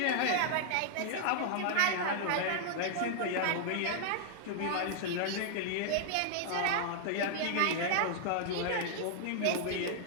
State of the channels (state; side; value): different; both; correlation -0.01